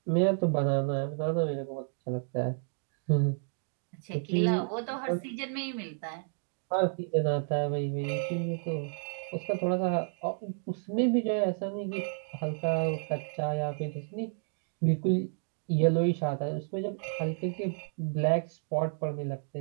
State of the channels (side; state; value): left; silent; digital silence